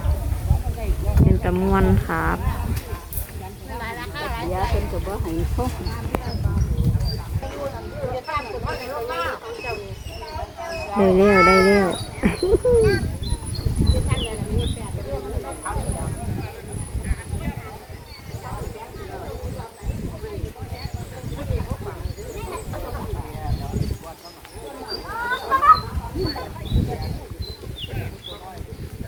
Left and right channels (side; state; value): both; identical; correlation 1.00